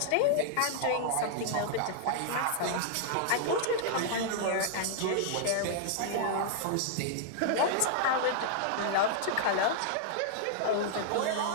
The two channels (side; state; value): both; different; correlation -0.01